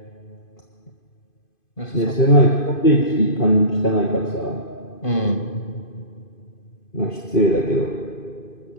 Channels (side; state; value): right; late; 2.5 ms